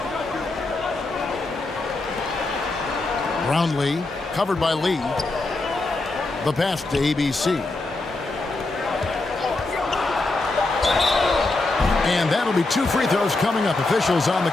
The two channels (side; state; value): right; quieter; 3.2 dB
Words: Brownlee, covered by Lee. The pass to ABC. And that'll be 2 free throws coming up. Officials on the